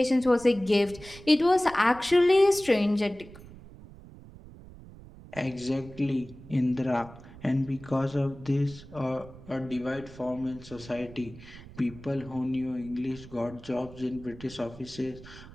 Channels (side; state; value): right; noise; rumble, 18 dB below the sound